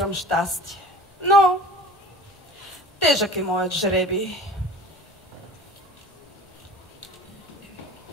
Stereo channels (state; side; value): normal; both; correlation 0.41